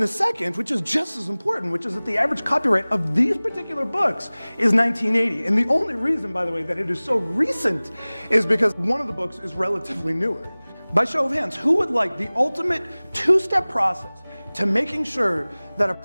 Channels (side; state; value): both; inverted; correlation -1.00